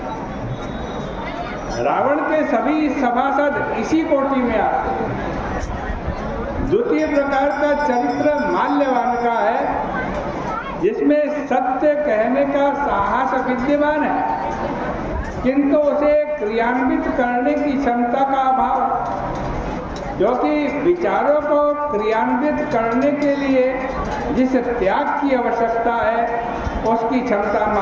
रावण के सभी सभासद इसी कोटि में आते हैं। द्वितीय प्रकार का चरित्र माल्यवान का है, जिसमें सत्य कहने का साहस विद्यमान है, किंतु उसे क्रियान्वित करने की क्षमता का अभाव है, क्योंकि विचारों को क्रियान्वित करने के लिए जिस त्याग की आवश्यकता है उसकी क्षमता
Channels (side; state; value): both; identical; correlation 1.00